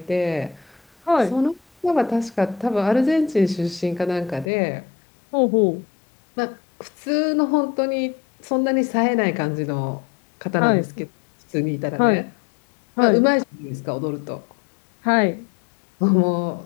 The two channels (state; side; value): drops out; right; at 4.5 s